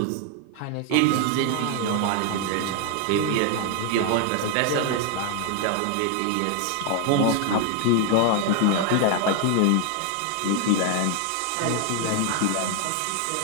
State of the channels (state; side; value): different; both; correlation 0.01